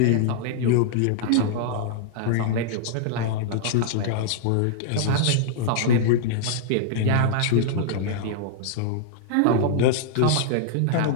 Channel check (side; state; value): both; different; correlation -0.02